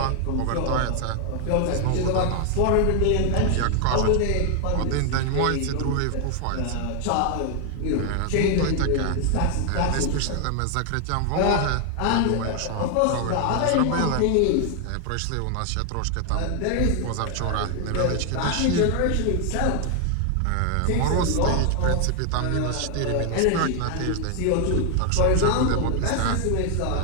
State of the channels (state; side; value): different; both; correlation 0.00